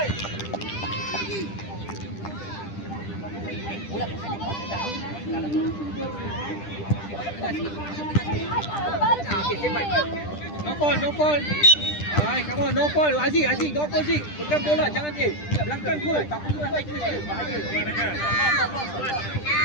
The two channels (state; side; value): late; right; 10 ms